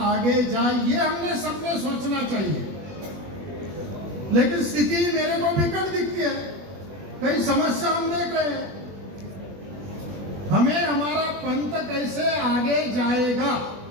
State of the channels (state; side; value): late; left; 20 ms